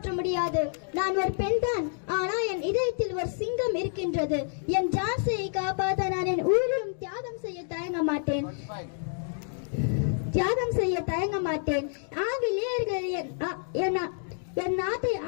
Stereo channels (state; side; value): silent; right; digital silence